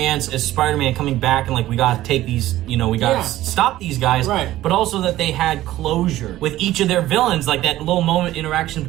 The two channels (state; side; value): quieter; left; 15.0 dB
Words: as Spider-Man coming back and like, we gotta take these, we gotta stop these guys. But also that they had closure with each of their villains, like that little moment interaction